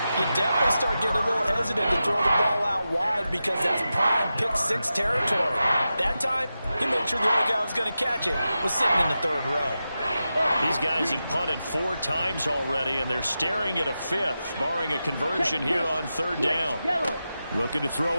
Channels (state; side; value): inverted; both; correlation -0.91